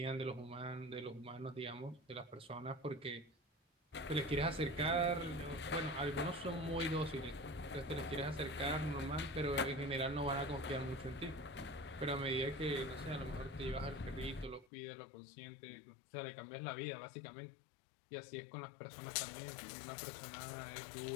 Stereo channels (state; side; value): drops out; right; at 14.7 s